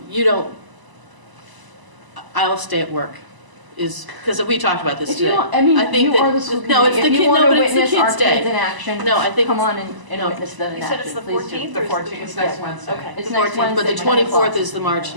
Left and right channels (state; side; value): late; left; 1.0 ms